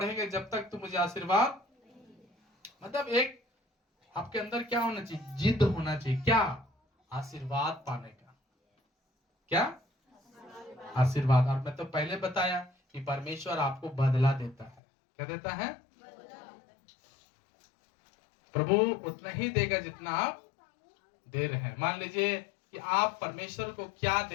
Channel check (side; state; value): right; drops out; at 14.8 s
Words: जब तक तू मुझे आशीर्वाद, मतलब एक आपके अंदर क्या होना चाहिए, जिद होना चाहिए, क्या, आशीर्वाद पाने का, क्या, आशीर्वाद। और मैं तो पहले बताया कि परमेश्वर आपको बदला देता है, क्या देता है, प्रभु उतना ही देगा जितना आप दे रहे हैं। मान लीजिए कि आप परमेश्वर को क्या